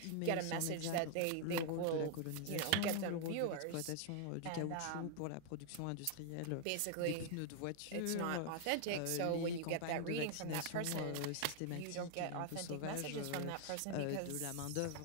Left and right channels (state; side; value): different; both; correlation 0.00